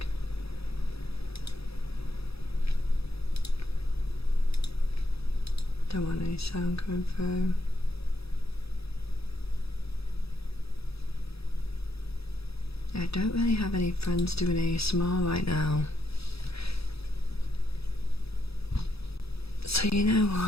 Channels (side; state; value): right; late; 0.77 ms